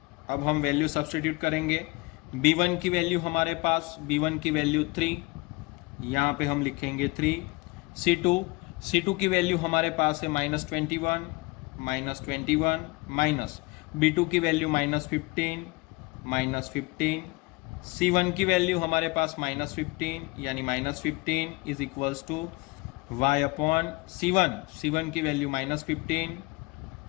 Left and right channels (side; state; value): right; quieter; 24.6 dB